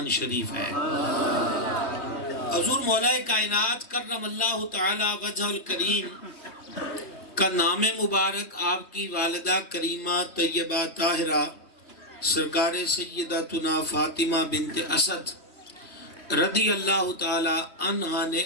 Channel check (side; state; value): right; late; 3.2 ms